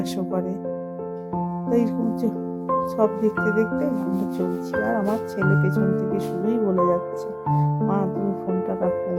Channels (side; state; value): both; identical; correlation 1.00